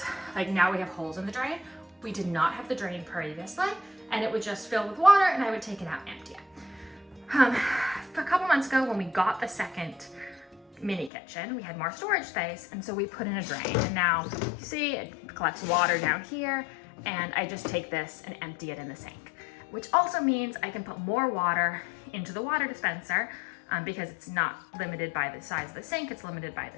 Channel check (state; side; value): drops out; right; at 11.1 s